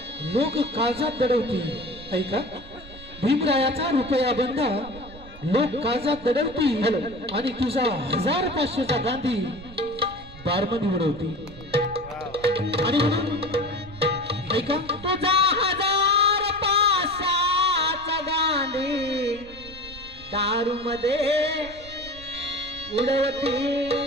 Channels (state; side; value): noise; right; rumble, 17 dB below the sound